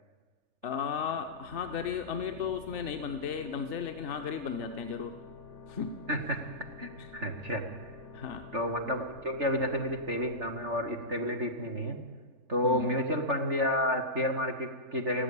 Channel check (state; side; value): late; left; 3.4 ms